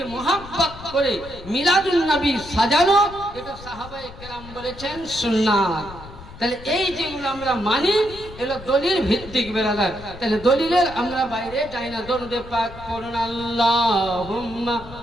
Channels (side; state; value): left; noise; rumble, 16 dB below the sound